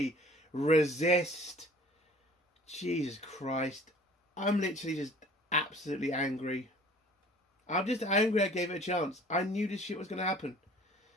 resist. Jesus Christ. I'm literally just absolutely angry. I'm just angry I gave it a chance. I knew this shit was going to happen.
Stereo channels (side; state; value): both; normal; correlation 0.50